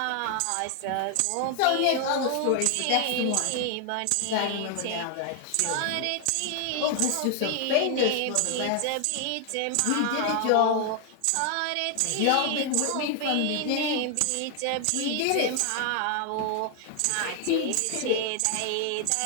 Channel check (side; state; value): both; different; correlation 0.00